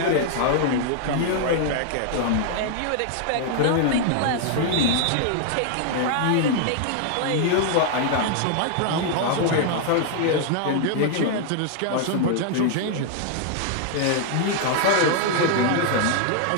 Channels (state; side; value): different; both; correlation 0.00